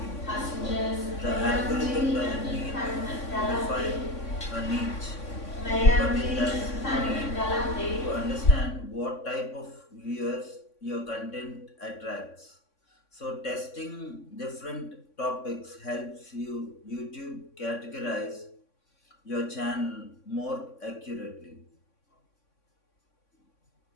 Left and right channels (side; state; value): right; late; 3.6 ms